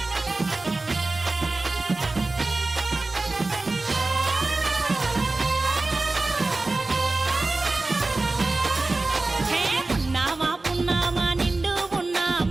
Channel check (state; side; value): quieter; left; 3.2 dB